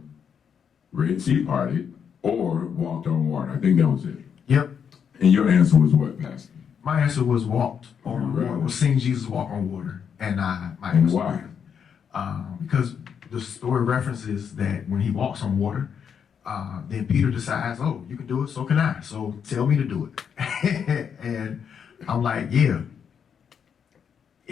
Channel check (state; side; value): quieter; right; 7.4 dB